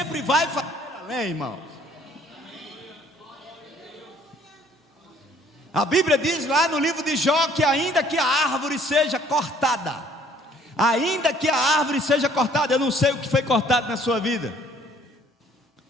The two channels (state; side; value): normal; both; correlation 0.59